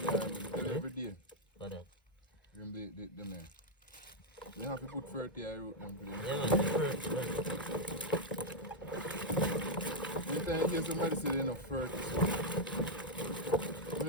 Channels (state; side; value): normal; both; correlation -0.01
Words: every day. For that. Them the man. They have to put 30 I wrote them for them. Yeah, man, the first, man. Anytime you hear somebody say they're not 30, so. You